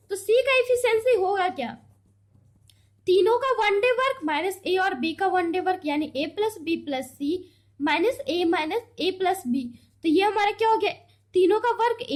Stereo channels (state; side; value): identical; both; correlation 1.00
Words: तो सी का एफिशिएंसी होगा क्या, तीनों का 1 डे वर्क माइनस ए और बी का 1 डे वर्क यानी ए प्लस बी प्लस सी माइनस ए प्लस बी। तो ये हमारा क्या हो गया, तीनों का वर्क